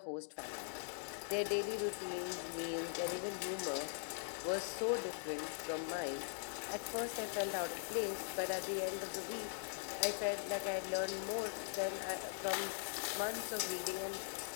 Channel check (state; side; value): silent; right; digital silence